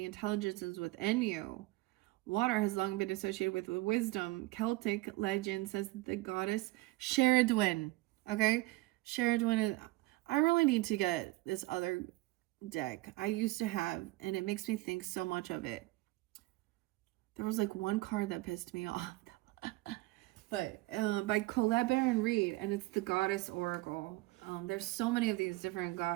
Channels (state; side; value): quieter; left; 20.4 dB